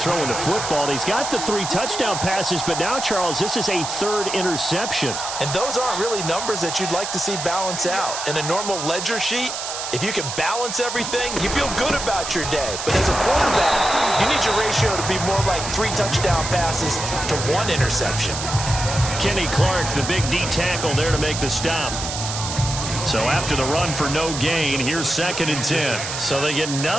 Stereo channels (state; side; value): noise; right; hiss, 5 dB below the sound